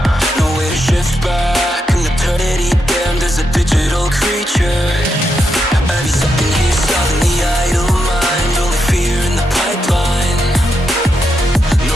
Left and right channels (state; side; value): normal; both; correlation 0.84